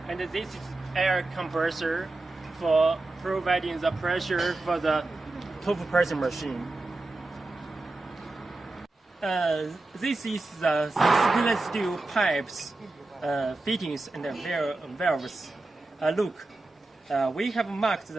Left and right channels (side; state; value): left; quieter; 3.0 dB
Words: this is air compressor for providing the pressure for the tofu pressing machine. This is the stainless steel pipes, fittings, and valves. Look, we have marked